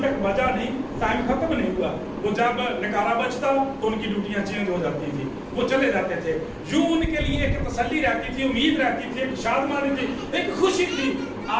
تک بجا نہیں، ٹائم ختم نہیں ہوا۔ وہ جب نکارا بجتا تو ان کی ڈیوٹیاں چینج ہو جاتی تھی، وہ چلے جاتے تھے۔ یوں ان کے لیے ایک تسلی رہتی تھی، امید رہتی تھی، ایک شادمانی تھی، ایک خوشی تھی۔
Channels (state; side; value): identical; both; correlation 1.00